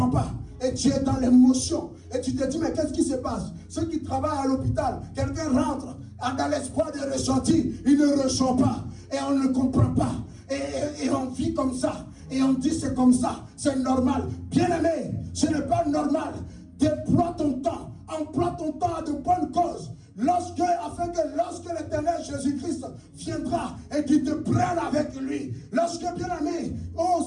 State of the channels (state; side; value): identical; both; correlation 1.00